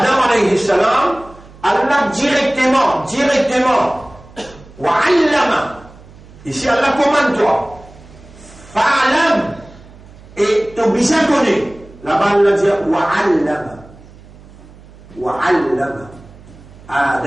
alayhi salam, Allah directement, wa allama, ici Allah commande toi, fa'alam, et tu as besoin de connaître, Là-bas, il dit wa'allama. Wa'allama.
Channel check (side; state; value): right; noise; hum, 22 dB below the sound